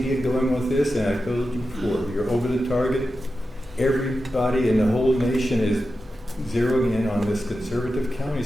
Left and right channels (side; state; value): both; normal; correlation 0.91